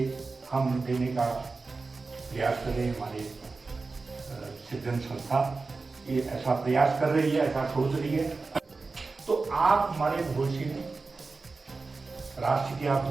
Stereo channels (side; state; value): left; quieter; 4.0 dB